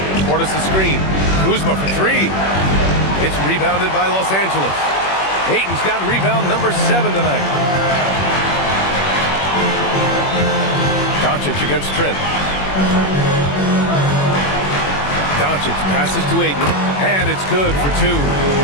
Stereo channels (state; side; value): late; right; 21 ms